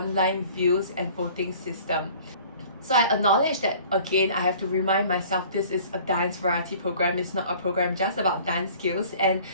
views and voting system. So I acknowledge that again, I have to remind myself this is a dance variety program. It's not a program just about dance skills, and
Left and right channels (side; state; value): both; inverted; correlation -0.50